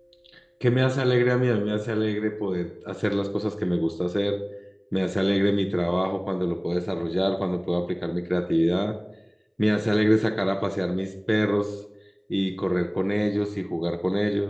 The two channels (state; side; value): identical; both; correlation 1.00